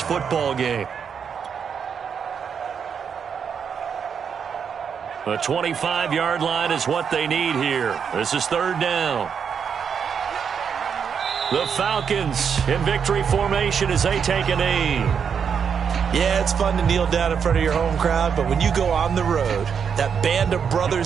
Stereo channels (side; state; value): left; quieter; 7.0 dB